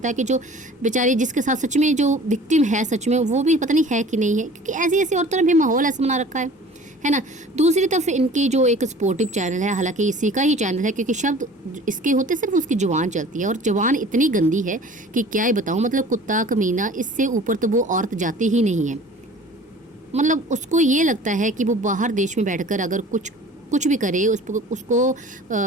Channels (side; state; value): both; normal; correlation 0.45